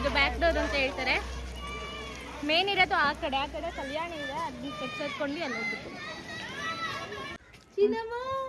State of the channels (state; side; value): identical; both; correlation 1.00